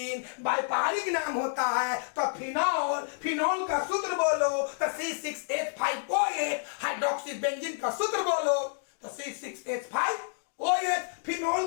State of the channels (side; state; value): right; silent; digital silence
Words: व्यापारिक नाम होता है तो फिनॉल। फिनॉल का सूत्र बोलो तो C6H5OH, हाइड्रोक्सी बेंजीन का सूत्र बोलो तो C6H5OH।